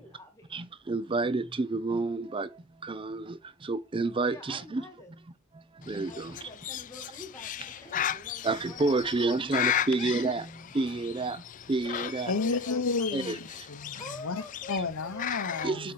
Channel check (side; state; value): both; normal; correlation 0.36